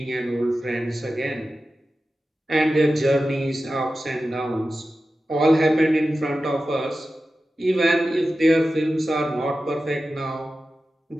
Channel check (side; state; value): both; normal; correlation 0.93